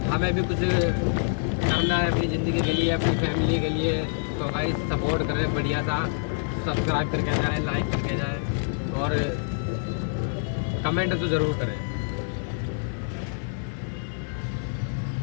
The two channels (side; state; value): right; silent; digital silence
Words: हमें भी कुछ करना है अपनी ज़िंदगी के लिए, अपनी फैमिली के लिए। तो भाई सपोर्ट करें बढ़िया सा, सब्सक्राइब करके जाए, लाइक करके जाए, और कमेंट तो ज़रूर करें।